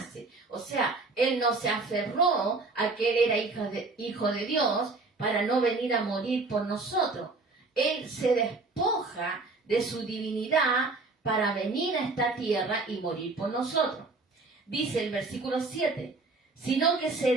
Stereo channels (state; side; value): quieter; left; 3.6 dB